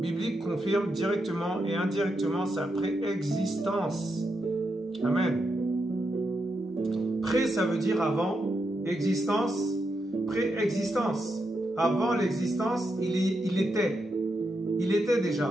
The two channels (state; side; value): normal; both; correlation 0.84